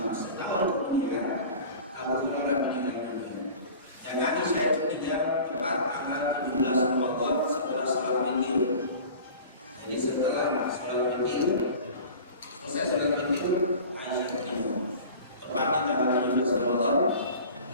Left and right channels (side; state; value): both; inverted; correlation -0.40